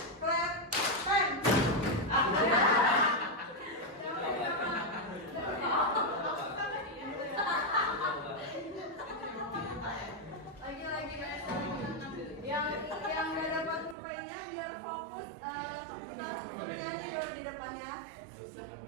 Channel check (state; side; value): drops out; left; at 14.0 s